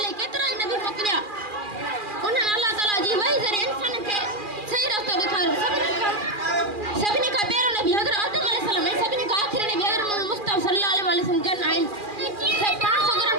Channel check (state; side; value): late; left; 2.4 ms